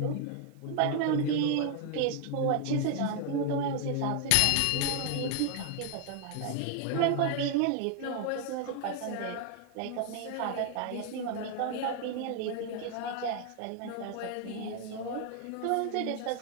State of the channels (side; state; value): both; different; correlation 0.00